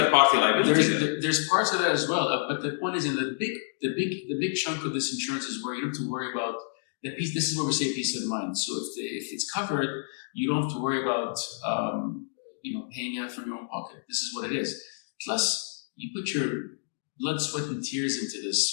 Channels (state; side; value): silent; right; digital silence